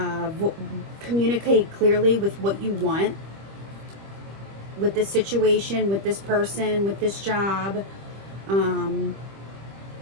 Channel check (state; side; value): late; left; 25 ms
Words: communicate clearly with what you want with this situation, with this person, with this job,